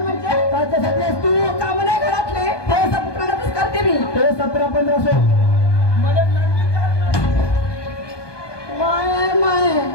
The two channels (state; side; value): late; right; 1.2 ms